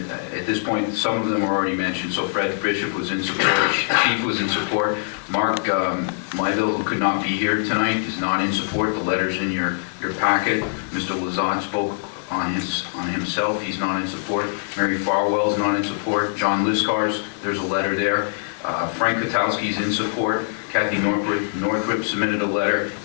at this point, some of them are already mentioned. So Fred Bishop was in support, Chief was in support, Mark Myville, who could not be here tonight, is not in support. The letter's in your packet. Mr. Lazat spoke on himself, he's not in support. Mary Farwell's not in support. John Liscars, there's a letter there. Frank Kotowski's in support. Kathy Northrup submitted a letter,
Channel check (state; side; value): silent; right; 64 dB below the other